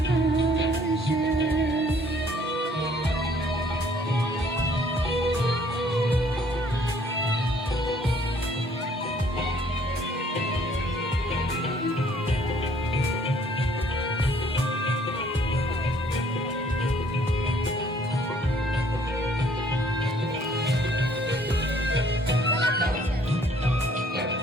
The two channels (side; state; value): both; normal; correlation 0.61